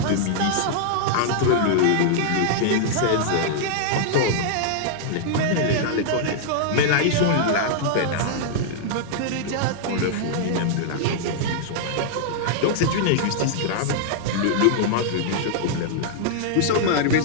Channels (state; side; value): different; both; correlation -0.01